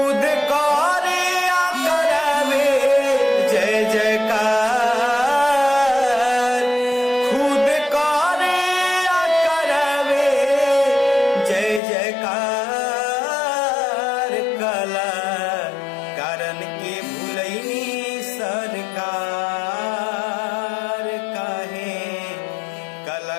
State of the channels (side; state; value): right; drops out; at 11.8 s